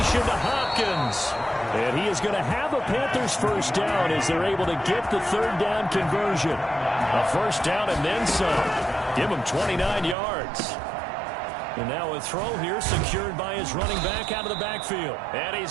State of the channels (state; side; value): drops out; left; at 10.2 s